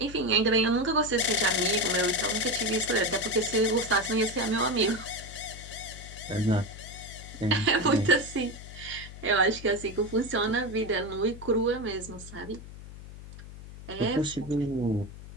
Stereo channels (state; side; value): noise; left; hum, 14 dB below the sound